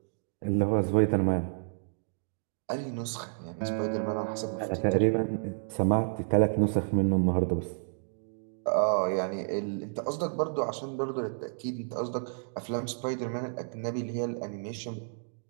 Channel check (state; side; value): silent; left; digital silence